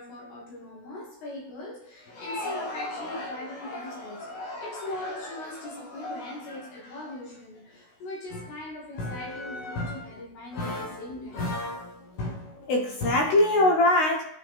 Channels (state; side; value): late; right; 16 ms